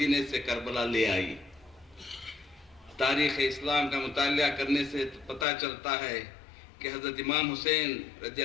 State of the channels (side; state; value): right; drops out; at 5.5 s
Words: سے کربلا لے آئی۔ تاریخ اسلام کا مطالعہ کرنے سے پتہ چلتا ہے کہ حضرت امام حسین رضی